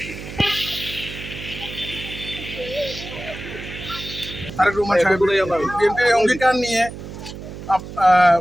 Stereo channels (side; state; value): right; noise; hum, 11 dB below the sound